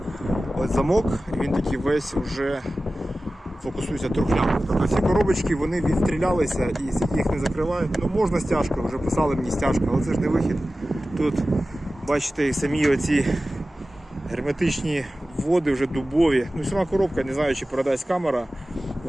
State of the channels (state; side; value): normal; both; correlation 0.95